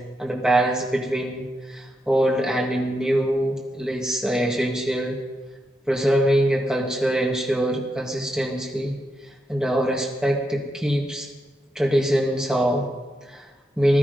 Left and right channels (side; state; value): both; normal; correlation 0.83